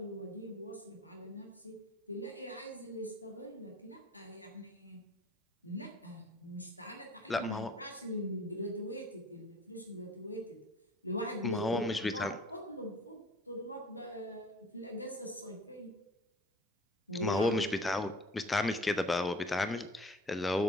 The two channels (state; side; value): normal; both; correlation 0.49